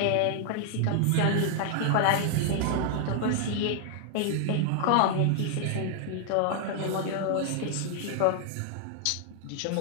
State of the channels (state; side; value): different; both; correlation 0.00